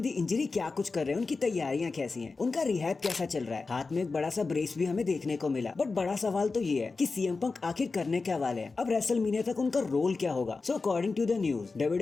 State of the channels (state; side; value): quieter; right; 4.0 dB